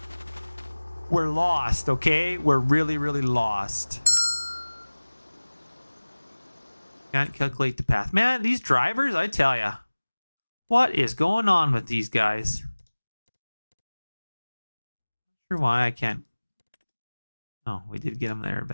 We're lost, okay? We're really, really lost. Can't calculate the path. Man, these drivers, I tell ya. What is going on with these guys? Not sure why I can't. Oh, we did get them there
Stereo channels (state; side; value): inverted; both; correlation -1.00